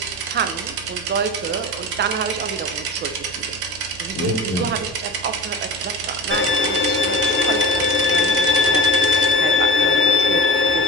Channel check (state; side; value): noise; right; hum, 21 dB below the sound